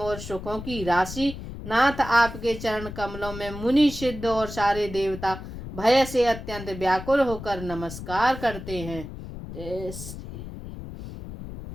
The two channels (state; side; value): noise; left; rumble, 10 dB below the sound